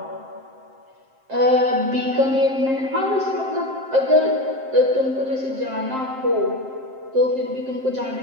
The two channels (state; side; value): late; left; 7.6 ms